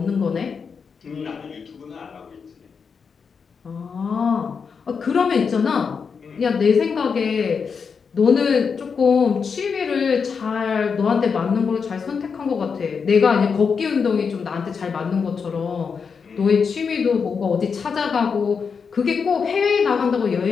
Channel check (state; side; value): quieter; right; 5.8 dB